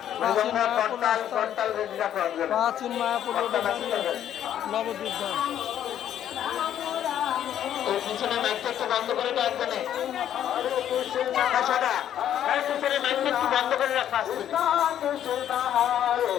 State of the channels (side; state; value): right; quieter; 10.5 dB